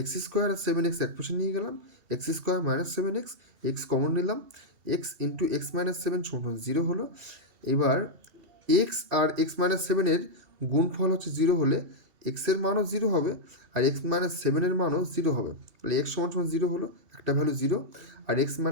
স্কোয়ার আর 7x এক পাশে নিয়ে গেলাম, x square minus 7x, x common নিলাম, এক্স ইন্টু এক্স মাইনাস 7 সমান 0 হলো। এবার এক্স আর এক্স মাইনাস 7-এর গুণফল হচ্ছে 0 হলে এক্সের মানও 0 হবে আর এক্স মাইনাস 7-এর মানও 0 হবে। তাহলে এক্স সমান সমান 0 হলো, একটা ভ্যালু 0, আর এক্স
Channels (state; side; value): late; left; 2.8 ms